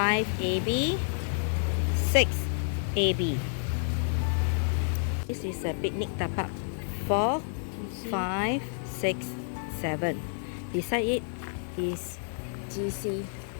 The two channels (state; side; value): silent; right; 58 dB below the other